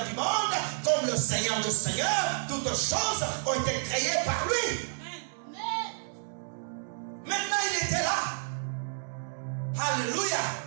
du monde, comme le Seigneur des Seigneurs. Toutes choses ont été créées par lui. Maintenant, il était là. Alléluia.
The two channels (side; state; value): left; silent; digital silence